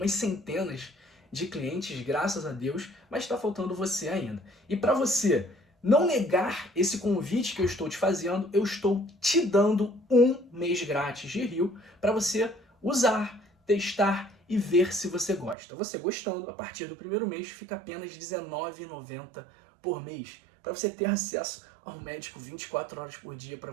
centenas de clientes, graças a Deus, mas está faltando você ainda. E para você não negar esse convite que eu estou te fazendo, eu estou te dando um mês grátis de Rio para você usar, testar e ver se você gosta. Você gostando, a partir do primeiro mês fica apenas R$ 19,90 por mês, para você ter acesso ao médico 24 horas por dia para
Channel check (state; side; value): drops out; left; at 15.6 s